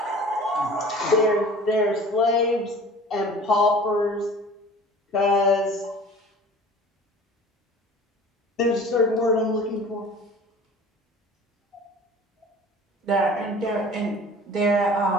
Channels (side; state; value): both; normal; correlation 0.44